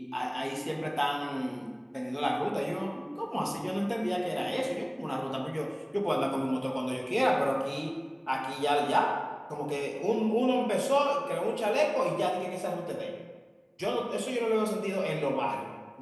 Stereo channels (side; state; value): both; identical; correlation 1.00